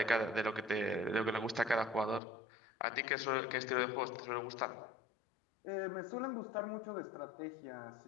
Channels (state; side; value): drops out; right; at 2.2 s